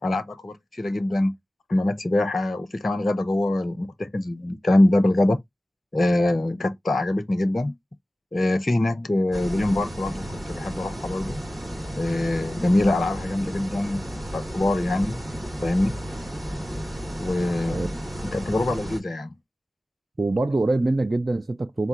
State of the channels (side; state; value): both; normal; correlation 0.96